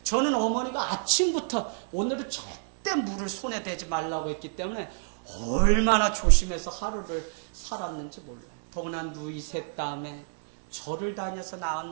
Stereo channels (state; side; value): silent; left; digital silence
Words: 저는 어머니가 아침부터 오늘은 절대 물을 손에 대지 말라고 했기 때문에 얼마나 조심해서 하루를 살았는지 몰라요. 더구나 누이 셋 다음에 절을 다녀서